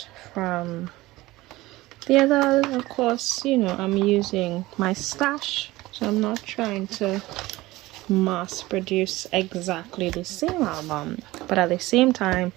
from the other. Of course, you know, I'm using my stash, so I'm not trying to mass produce exactly the same album, but at the same time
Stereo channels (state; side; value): quieter; left; 18.9 dB